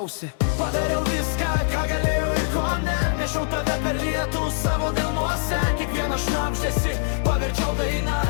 Padariau viską, ką galėjau ir ko ne, nešiau tave per lietų savo delnuose. Kiekvieną šnabždesį paverčiau dainą,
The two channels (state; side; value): silent; right; digital silence